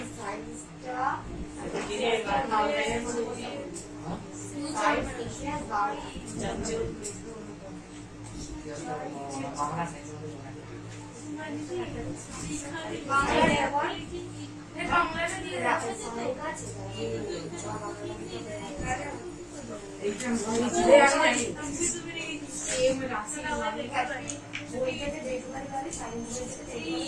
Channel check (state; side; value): identical; both; correlation 1.00